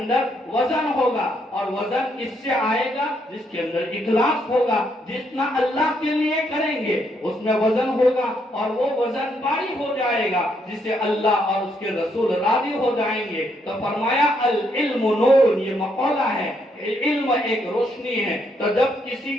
وزن ہوگا، اور وزن کس سے آئے گا؟ جس کے اندر اخلاص ہوگا، جتنا اللہ کے لیے کریں گے اس میں وزن ہوگا اور وہ وزن باری ہو جائے گا جس سے اللہ اور اس کے رسول راضی ہو جائیں گے۔ تو فرمایا العلم نور، یہ مقولہ ہے، علم ایک روشنی ہے۔ تو جب کسی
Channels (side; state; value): both; normal; correlation 0.74